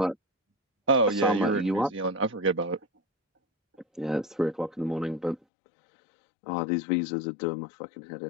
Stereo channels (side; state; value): right; drops out; at 5.4 s